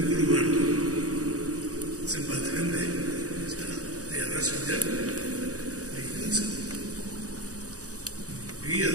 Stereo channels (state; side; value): late; left; 0.66 ms